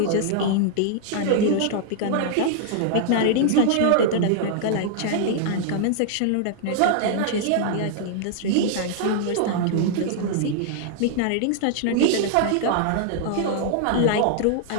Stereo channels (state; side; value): different; both; correlation -0.01